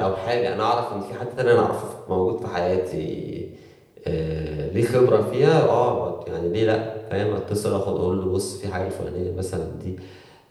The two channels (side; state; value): both; identical; correlation 1.00